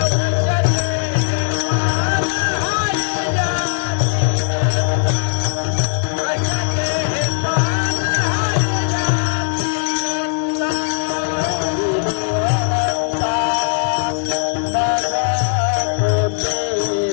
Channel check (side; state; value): right; silent; 62 dB below the other